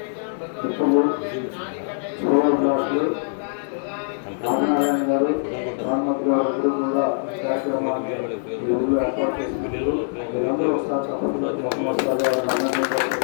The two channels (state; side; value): silent; right; digital silence